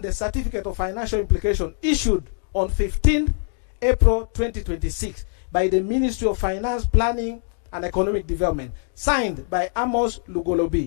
the certificate of financial implication issued on 15 April 2026 by the Ministry of Finance, Planning and Economic Development, signed by Amos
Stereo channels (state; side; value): silent; right; 63 dB below the other